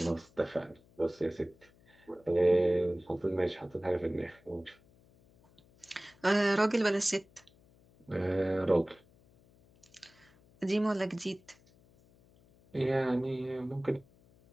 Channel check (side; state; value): left; noise; hum, 29 dB below the sound